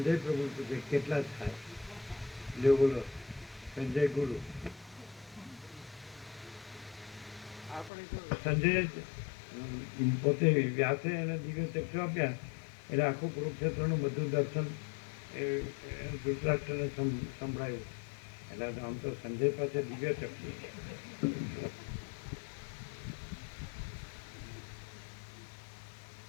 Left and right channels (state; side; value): drops out; right; at 7.9 s